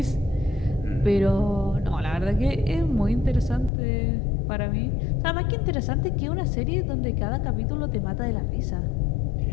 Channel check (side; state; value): right; drops out; at 3.7 s